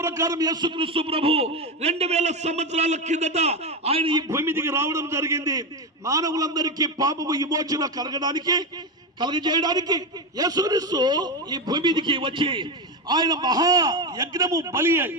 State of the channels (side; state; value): both; normal; correlation 0.14